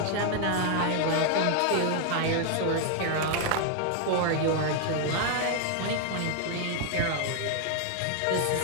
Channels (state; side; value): different; both; correlation 0.00